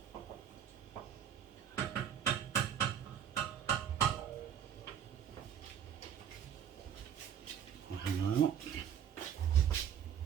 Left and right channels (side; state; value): left; quieter; 9.0 dB